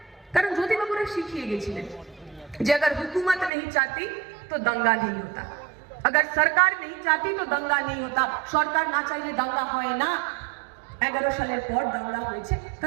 কারণ জ্যোতিবাবুরা শিখিয়ে গেছিলেন যে अगर हुकूमत नहीं चाहती तो दंगा नहीं होता, अगर सरकार नहीं चाहती तो दंगा नहीं होता। সরকার না চাইলে দাঙ্গা হয় না। 11 সালের পর দাঙ্গা হয়েছে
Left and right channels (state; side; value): drops out; left; at 3.5 s